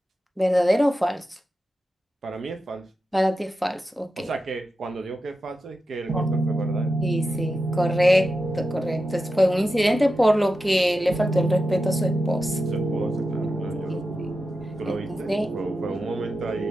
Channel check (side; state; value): both; normal; correlation 0.91